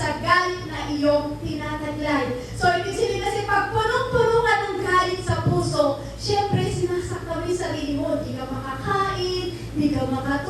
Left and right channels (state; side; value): identical; both; correlation 1.00